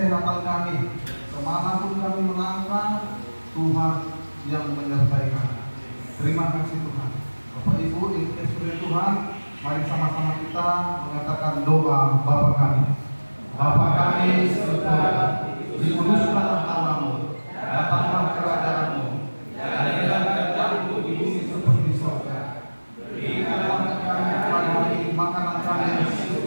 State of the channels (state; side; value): inverted; both; correlation -1.00